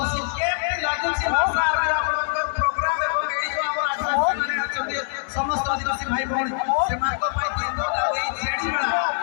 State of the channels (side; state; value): right; silent; 63 dB below the other